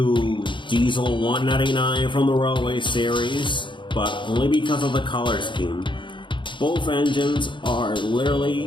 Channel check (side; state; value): right; late; 0.23 ms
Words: Diesel 199 from the Railway series, but only because of the color scheme. Both engines are